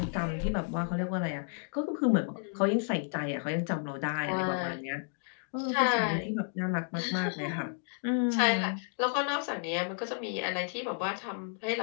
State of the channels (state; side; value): silent; right; 57 dB below the other